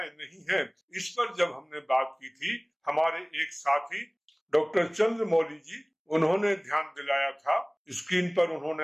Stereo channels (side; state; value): both; identical; correlation 1.00